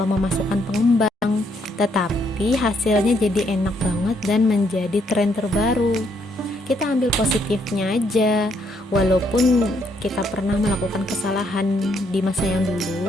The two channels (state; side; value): normal; both; correlation 0.72